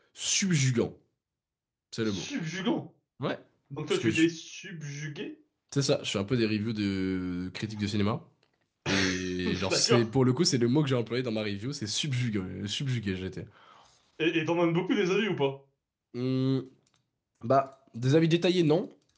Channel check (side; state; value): both; identical; correlation 1.00